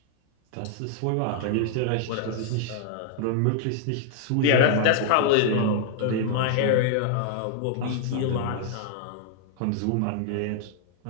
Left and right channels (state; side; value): different; both; correlation -0.01